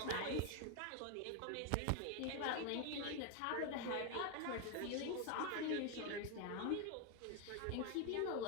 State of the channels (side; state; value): both; different; correlation 0.01